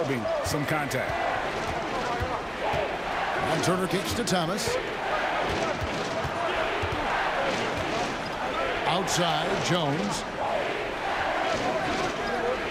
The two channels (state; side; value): identical; both; correlation 1.00